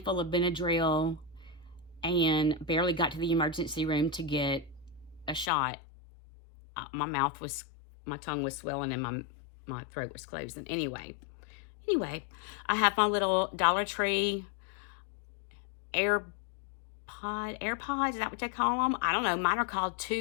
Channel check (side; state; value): right; drops out; at 5.5 s